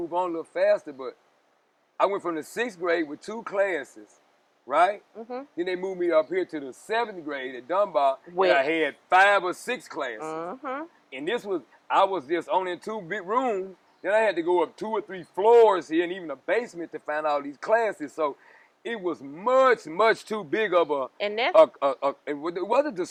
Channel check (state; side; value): identical; both; correlation 1.00